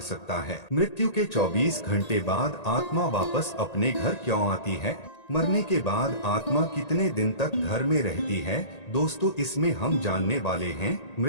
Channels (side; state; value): right; late; 1.8 ms